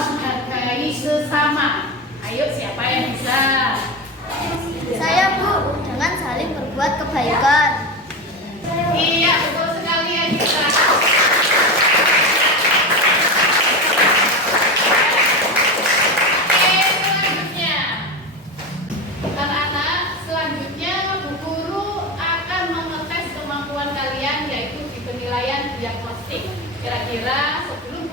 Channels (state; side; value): normal; both; correlation 0.20